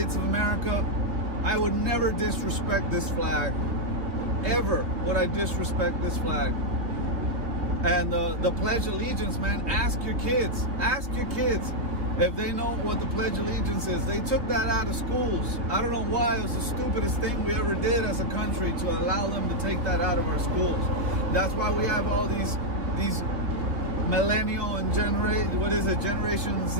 of America. I would never disrespect this flag. Ever would I disrespect this flag. And the Pledge of Allegiance, man, ask your kids if they know what the Pledge of Allegiance is. They took that out of schools. I don't know why. It was the stupidest thing we ever did as a country to allow them to take that out of our schools. That's why we have all these millennial and Generation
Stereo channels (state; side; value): late; left; 3.0 ms